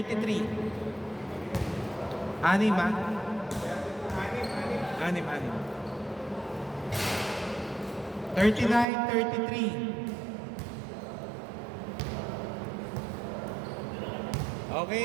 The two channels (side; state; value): left; drops out; at 8.8 s